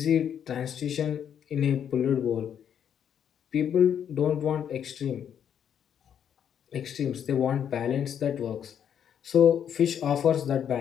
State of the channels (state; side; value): quieter; right; 8.8 dB